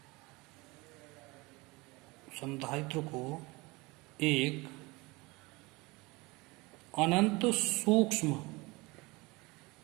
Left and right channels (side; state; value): left; quieter; 24.0 dB